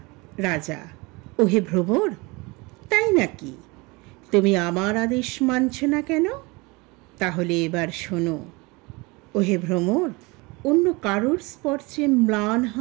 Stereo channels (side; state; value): left; quieter; 25.6 dB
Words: রাজা: ওহে ভ্রমর, তাই নাকি? তুমি আমার আদেশ মানছ না কেন? তাহলে এবার শোনো। ওহে ভ্রমর, অন্য কারোর স্পর্শে ম্লান